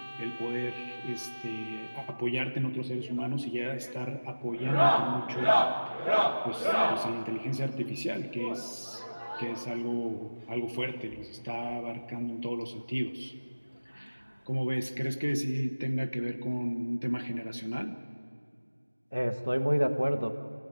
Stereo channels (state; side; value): inverted; both; correlation -1.00